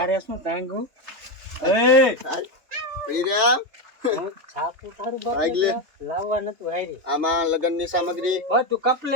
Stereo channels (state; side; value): late; left; 3.3 ms